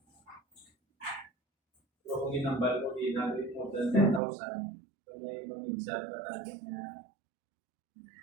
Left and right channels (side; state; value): left; drops out; at 4.2 s